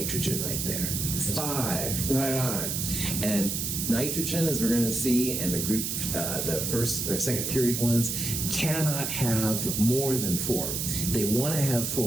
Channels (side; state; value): right; noise; hiss, 2 dB below the sound